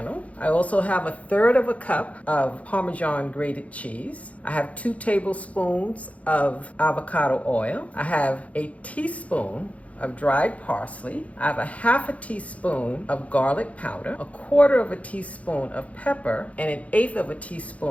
I also have 1/3 cup of Parmesan grated cheese. I have 2 tablespoons of avocado oil. I have a teaspoon of dried parsley. I have 1/2 teaspoon of garlic powder, 1/4 teaspoon of pepper, and 1/8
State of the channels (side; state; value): right; late; 0.066 ms